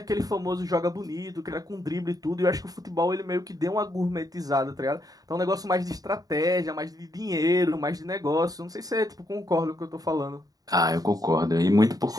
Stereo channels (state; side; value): late; left; 0.18 ms